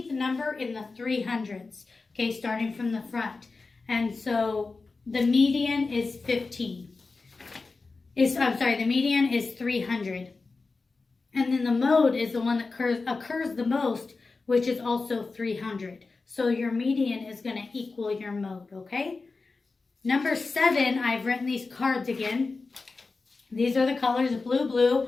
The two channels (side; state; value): right; quieter; 4.0 dB